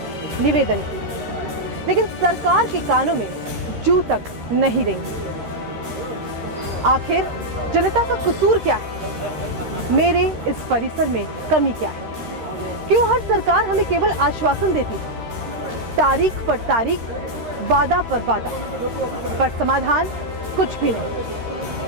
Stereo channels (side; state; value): left; late; 13 ms